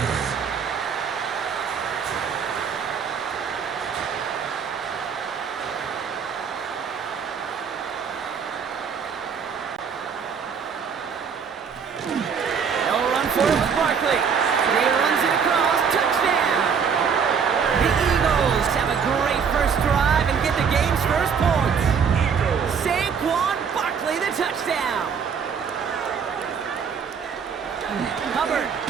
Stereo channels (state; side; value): quieter; left; 6.5 dB